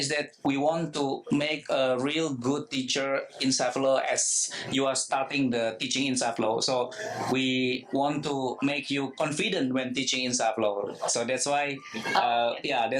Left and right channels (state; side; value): identical; both; correlation 1.00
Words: that we want to make a real good teacher Inside Flow as you are starting the teaching Inside Flow. So we want to make you confident when teaching Inside Flow. So that's why